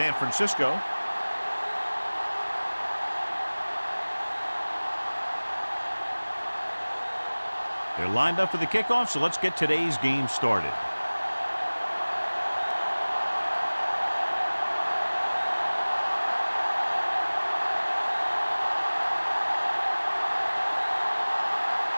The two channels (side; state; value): both; inverted; correlation -1.00